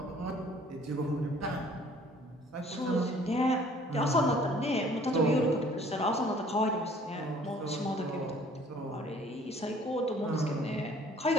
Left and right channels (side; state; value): both; normal; correlation 0.55